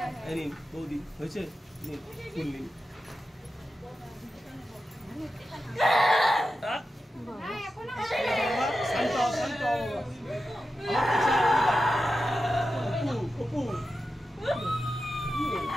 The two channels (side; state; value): both; normal; correlation 0.91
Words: এই নিন বৌদি, হয়েছে? নিন ফুল নিন।